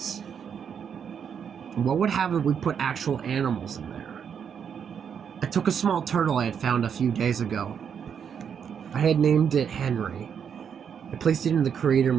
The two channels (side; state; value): left; quieter; 7.5 dB